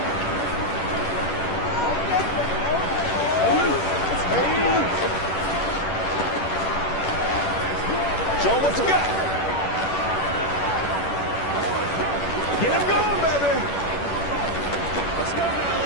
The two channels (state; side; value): late; right; 10 ms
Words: Show 'em what you got. Get him going, baby. Let's go now,